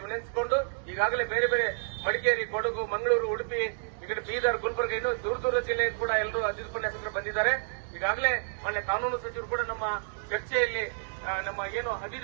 ವಿನಂತಿಸಿಕೊಂಡು, ಈಗಾಗಲೇ ಬೇರೆ ಬೇರೆ ಮಡಿಕೇರಿ, ಕೊಡಗು, ಮಂಗಳೂರು, ಉಡುಪಿ, ಈ ಕಡೆ ಬೀದರ್, ಗುಲ್ಬರ್ಗ, ಇನ್ನೂ ದೂರ ಜಿಲ್ಲೆ ಕೂಡ ಎಲ್ಲರೂ ಅತಿಥಿ ಉಪನ್ಯಾಸಕರು ಬಂದಿದ್ದಾರೆ. ಈಗಾಗಲೇ ಮಾನ್ಯ ಕಾನೂನು ಸಚಿವರು ಕೂಡ ನಮ್ಮ ಚರ್ಚೆಯಲ್ಲಿ ನಮ್ಮ ಏನು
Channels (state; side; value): silent; left; digital silence